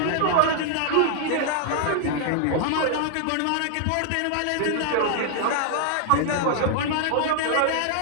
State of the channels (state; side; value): different; both; correlation -0.01